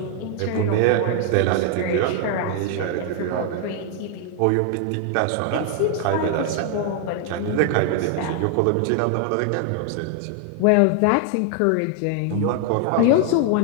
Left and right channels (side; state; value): both; different; correlation 0.00